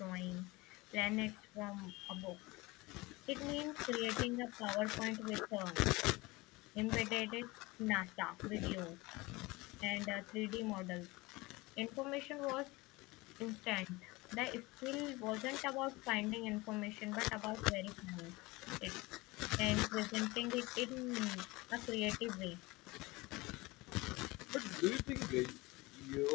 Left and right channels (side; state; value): right; quieter; 22.6 dB